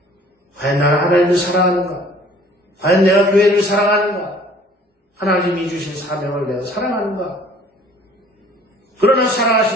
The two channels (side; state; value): both; normal; correlation 0.53